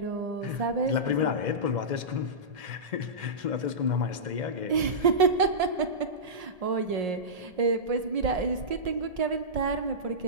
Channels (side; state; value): left; late; 1.7 ms